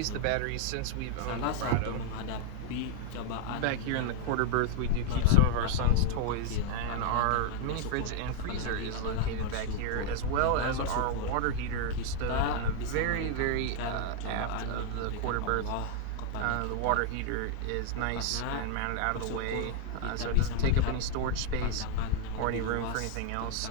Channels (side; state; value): both; different; correlation 0.00